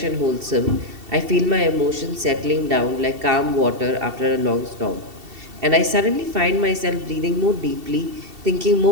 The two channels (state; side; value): late; left; 2.7 ms